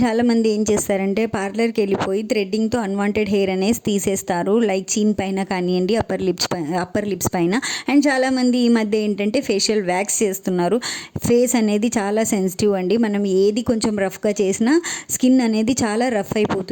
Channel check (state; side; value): identical; both; correlation 1.00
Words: చాలామంది ఏం చేస్తారంటే పార్లర్కి వెళ్ళిపోయి థ్రెడ్డింగ్తో అన్వాంటెడ్ హెయిర్ అనేది తీసేస్తారు, లైక్ చీన్ పైన కానివ్వండి, అప్పర్ లిప్స్ పైన. అండ్ చాలామంది ఈ మధ్య ఏంటంటే ఫేషియల్ వ్యాక్స్ చేస్తున్నారు. ఫేస్ అనేది చాలా సెన్సిటివ్ అండి. మనం ఏది కొంచెం రఫ్గా చేసినా స్కిన్ అనేది చాలా రఫ్